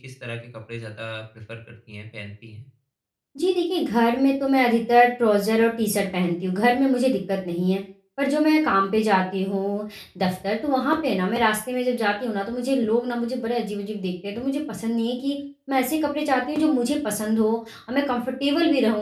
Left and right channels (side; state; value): both; identical; correlation 1.00